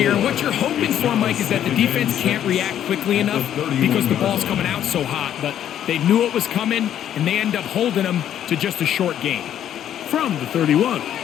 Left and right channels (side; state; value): right; quieter; 10.5 dB